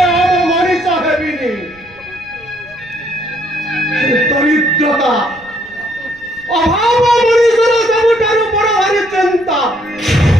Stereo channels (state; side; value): noise; right; rumble, 26 dB below the sound